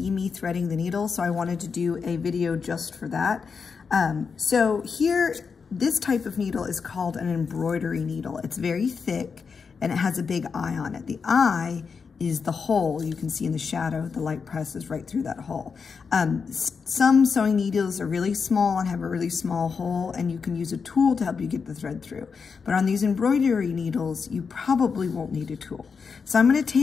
me threading the needle, so I wanted to do a video just for that. So here, this type of needle is called an embroidery needle. It's very thick and it has a big eye on it. The eye is the hole you can see in the shadow. The light presses right through that hole. Some sewing needles are really small and have a really small hole, and you can use a tool to help you get the thread through. But on these embroidery needles, you probably won't need a tool. So I'm gonna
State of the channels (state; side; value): quieter; right; 5.5 dB